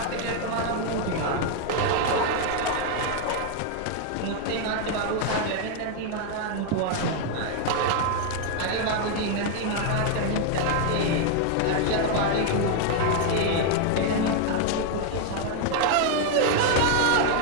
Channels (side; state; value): both; different; correlation 0.00